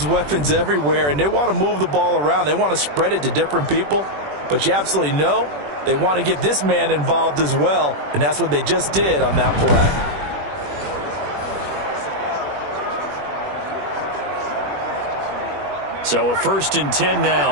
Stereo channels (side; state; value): left; late; 21 ms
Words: weapons everywhere, and they want to move the ball around. They want to spread it to different people. But you absolutely know they want to get this man involved as well, and that's what they just did on that play. So a 1st and 10